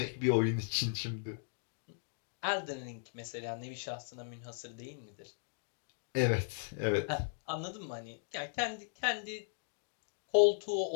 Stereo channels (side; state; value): right; silent; digital silence